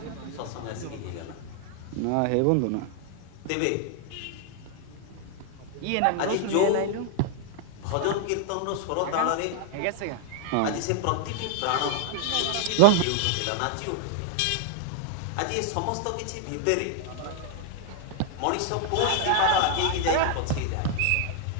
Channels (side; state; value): both; different; correlation 0.00